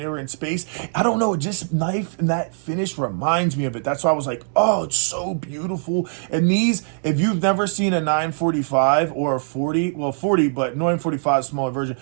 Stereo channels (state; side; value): silent; left; digital silence